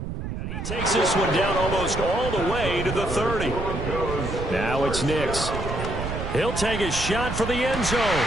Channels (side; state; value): right; noise; rumble, 5 dB below the sound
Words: And he takes this one down almost all the way to the 30. Now it's Nix. He'll take a shot for the end zone.